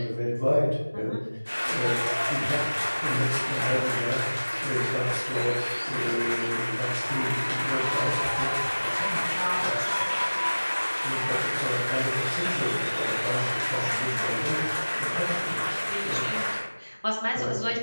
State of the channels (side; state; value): both; inverted; correlation -1.00